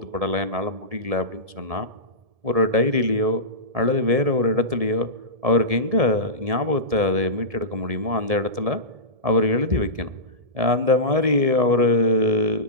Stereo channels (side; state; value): left; late; 1.7 ms